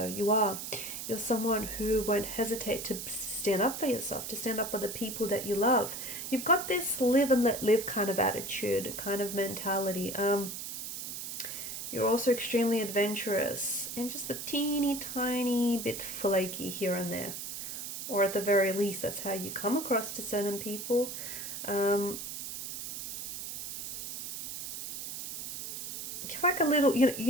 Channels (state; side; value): noise; right; hiss, 6 dB below the sound